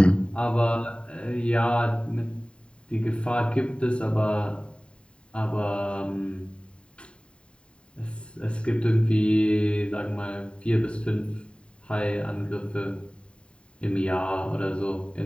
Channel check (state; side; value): late; right; 0.054 ms